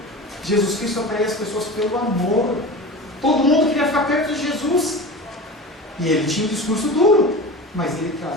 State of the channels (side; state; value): both; normal; correlation 0.32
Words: Jesus Cristo atraía as pessoas pelo amor. Todo mundo queria ficar perto de Jesus. E ele tinha um discurso duro, mas ele